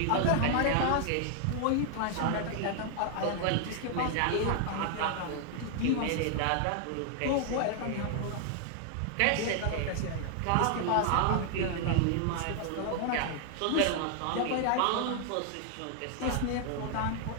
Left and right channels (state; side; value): different; both; correlation 0.00